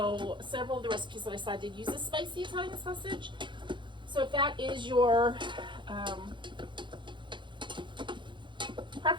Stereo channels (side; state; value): left; late; 0.23 ms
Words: several of the recipes that I saw did use a spicy Italian sausage. So if that is your